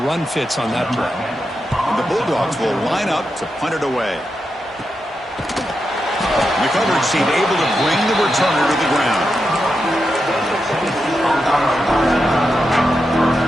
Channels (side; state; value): both; normal; correlation 0.87